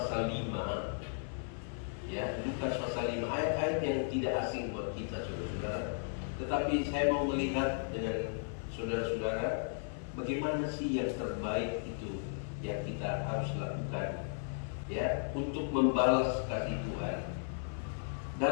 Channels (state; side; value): silent; right; 54 dB below the other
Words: 5. Ya, Lukas pasal 5, ayat-ayat yang tidak asing buat kita saudara-saudara. Tetapi saya mau melihat dengan saudara-saudara bagaimana sih yang terbaik itu yang kita harus lakukan, ya, untuk membalas kasih Tuhan.